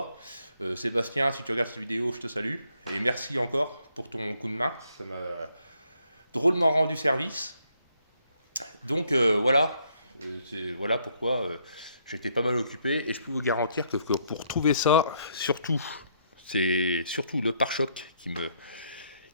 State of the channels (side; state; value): both; inverted; correlation -0.71